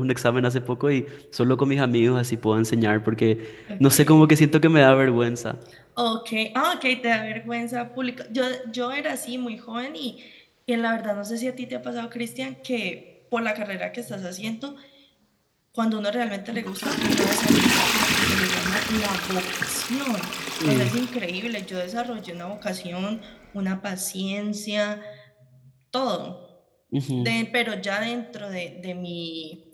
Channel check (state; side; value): identical; both; correlation 1.00